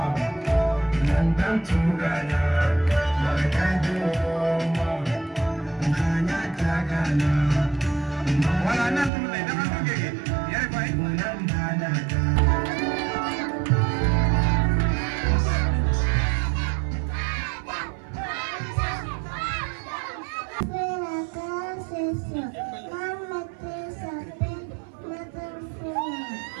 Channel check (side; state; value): left; drops out; at 9.1 s